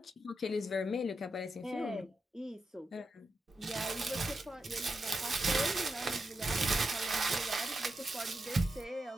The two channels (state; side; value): normal; both; correlation 0.87